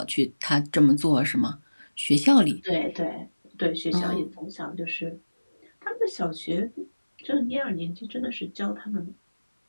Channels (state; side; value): inverted; both; correlation -1.00